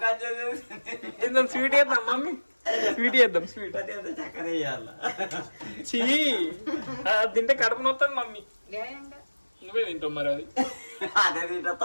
ఏదో స్వీట్ వేద్దాం మమ్మీ, స్వీట్ వేద్దాం. స్వీట్ చీ తింటే కడుపు నొస్తుంది మమ్మీ. నువ్వే తింటావు మరి అది. అదే తింటా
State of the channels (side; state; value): both; inverted; correlation -1.00